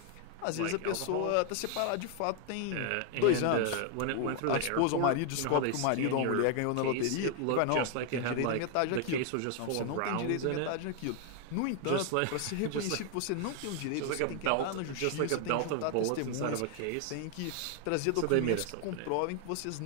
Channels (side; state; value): both; different; correlation 0.00